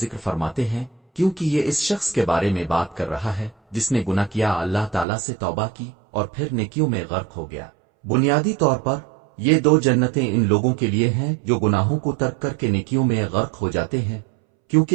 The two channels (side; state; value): left; drops out; at 5.1 s